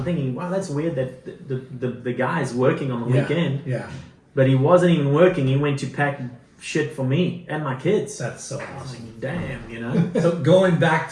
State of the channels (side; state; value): both; identical; correlation 1.00